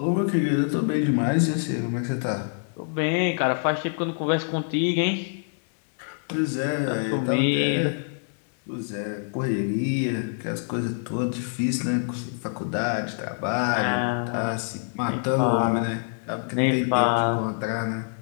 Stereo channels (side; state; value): right; silent; digital silence